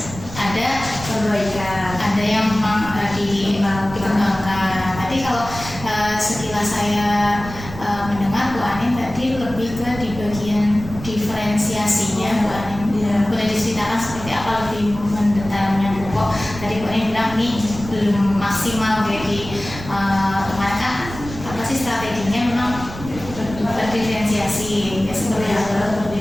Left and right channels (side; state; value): right; noise; rumble, 12 dB below the sound